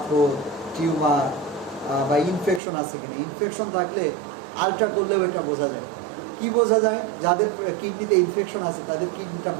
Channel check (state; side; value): drops out; left; at 2.6 s